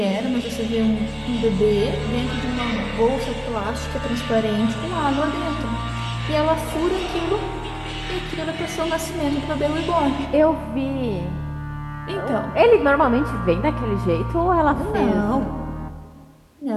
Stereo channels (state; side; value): identical; both; correlation 1.00